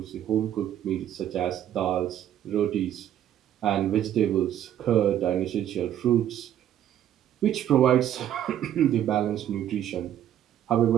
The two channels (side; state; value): left; quieter; 11.1 dB